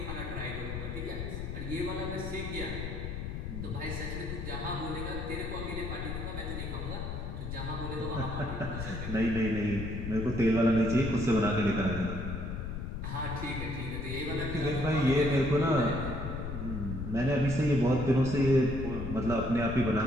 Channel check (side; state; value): left; noise; rumble, 5 dB below the sound